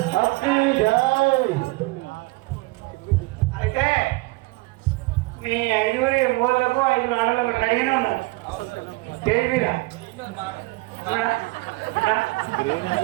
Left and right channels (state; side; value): quieter; left; 23.3 dB